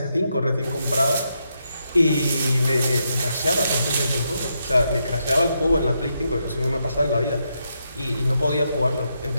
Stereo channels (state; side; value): inverted; both; correlation -0.81